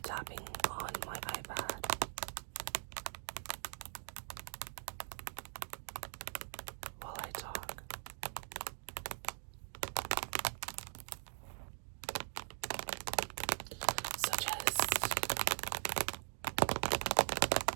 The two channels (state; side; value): silent; left; digital silence